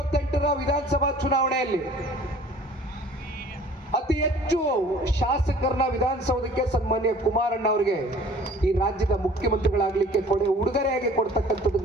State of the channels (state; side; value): normal; both; correlation 0.50